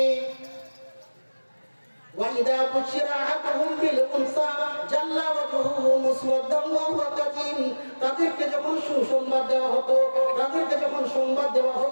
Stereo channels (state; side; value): inverted; both; correlation -1.00